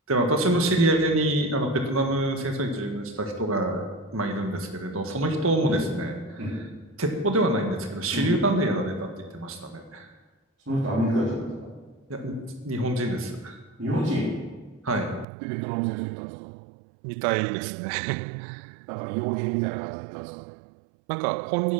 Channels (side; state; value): left; drops out; at 15.2 s